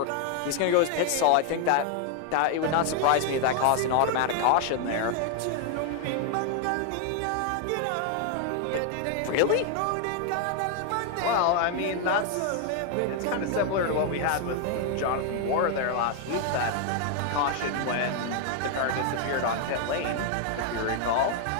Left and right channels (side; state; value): both; different; correlation 0.00